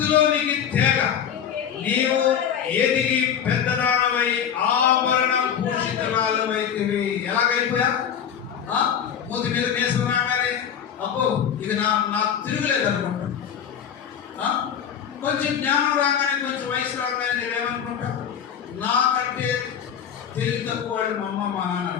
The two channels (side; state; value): right; quieter; 8.5 dB